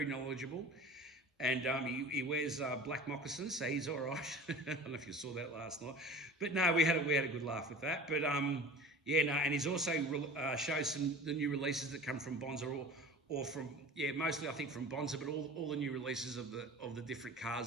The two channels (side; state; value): both; normal; correlation 0.38